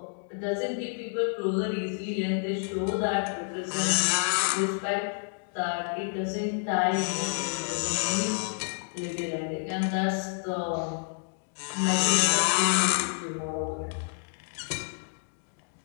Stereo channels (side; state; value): right; silent; 56 dB below the other